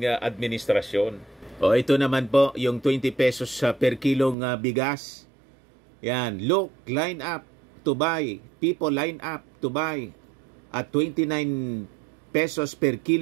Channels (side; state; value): left; drops out; at 4.4 s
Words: administrasyon. O ito naman po yung 20 pesos per kilong bigas. Yan, look, line up to buy. People line up to buy at 29 pesos per